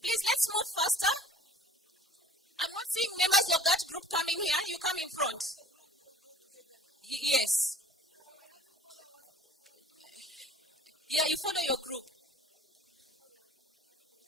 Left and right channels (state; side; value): normal; both; correlation 0.48